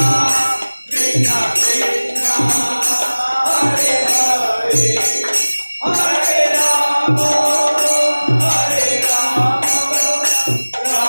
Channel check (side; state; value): both; inverted; correlation -1.00